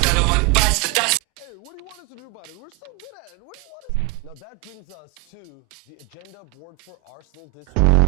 Hey, what do you want us to do about it? We're so good at it. What do you want us? Now that brings us to the agenda board for Arsenal this week.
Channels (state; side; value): quieter; left; 22.5 dB